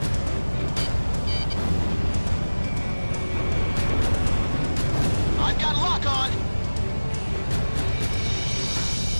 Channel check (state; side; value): inverted; both; correlation -1.00